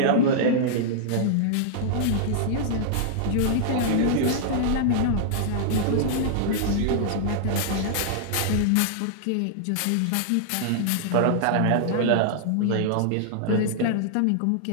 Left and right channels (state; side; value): different; both; correlation -0.01